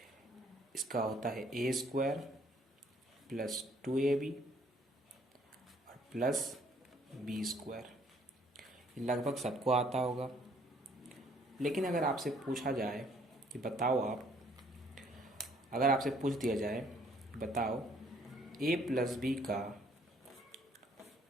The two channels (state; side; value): normal; both; correlation 0.63